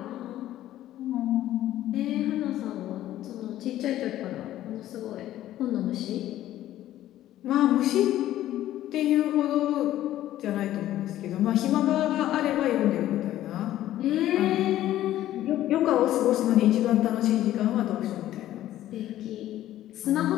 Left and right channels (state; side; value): quieter; right; 13.4 dB